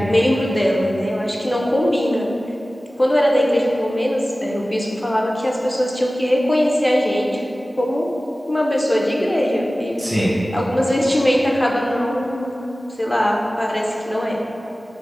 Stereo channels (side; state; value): both; normal; correlation 0.97